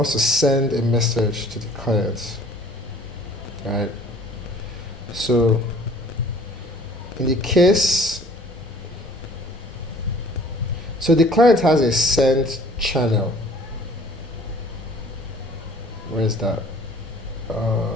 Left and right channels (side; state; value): both; normal; correlation 0.52